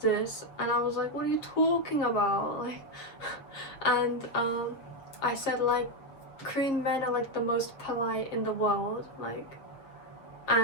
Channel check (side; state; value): right; late; 7.2 ms